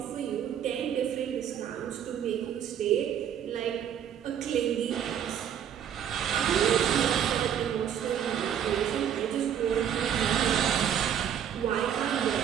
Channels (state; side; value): quieter; left; 9.1 dB